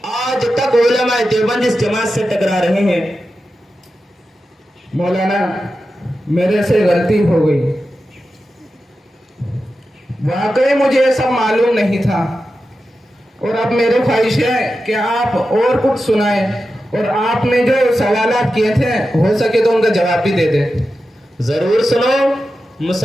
आज तक उलमा देवबंद इस जमात से टकरा रहे हैं। मौलाना, मेरे से गलती हो गई, वाकई मुझे ये सब मालूम नहीं था, और अब मेरी ख्वाहिश है कि आप और कुछ सुनाएं, और आपने जो सवालात किए थे हो सके तो उनका जवाब भी दे दें। जरूर सुनो।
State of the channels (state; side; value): normal; both; correlation 0.91